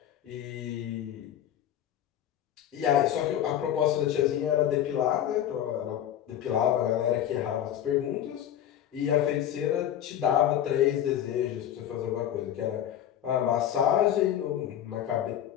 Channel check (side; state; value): right; quieter; 10.8 dB